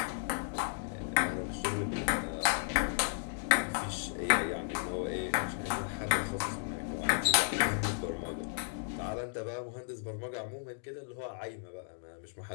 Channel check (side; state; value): right; silent; digital silence